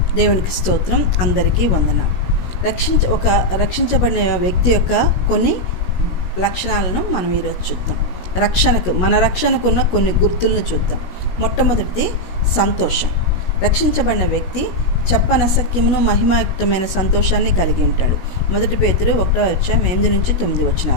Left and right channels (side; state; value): right; late; 17 ms